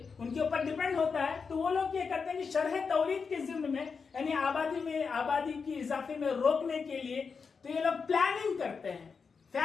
کے اوپر ڈیپینڈ ہوتا ہے. تو وہ لوگ یہ کرتے ہیں کہ شرح تولید کے ضمن میں یعنی آبادی کی اضافے میں روکنے کے لیے تو یہ لوگ پلاننگ کرتے ہیں.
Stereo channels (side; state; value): right; quieter; 5.4 dB